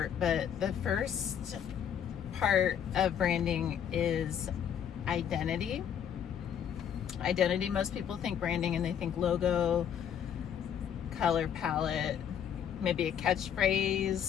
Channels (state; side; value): quieter; right; 8.8 dB